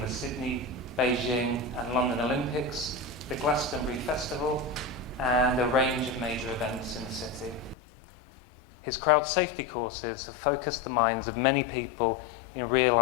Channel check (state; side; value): drops out; right; at 7.8 s